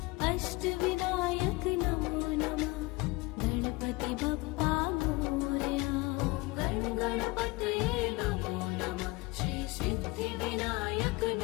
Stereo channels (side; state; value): right; quieter; 23.7 dB